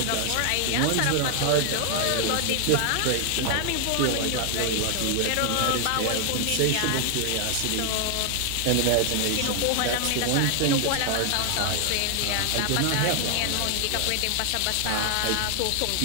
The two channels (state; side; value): different; both; correlation 0.00